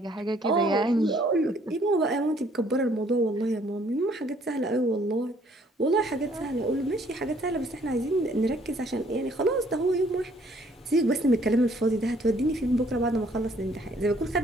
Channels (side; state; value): both; normal; correlation 0.62